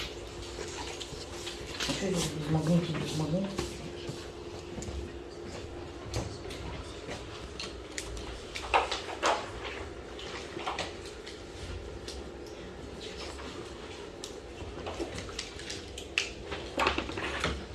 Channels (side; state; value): both; identical; correlation 1.00